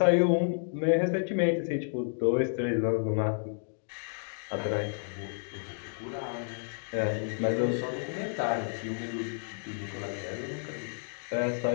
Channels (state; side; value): silent; right; digital silence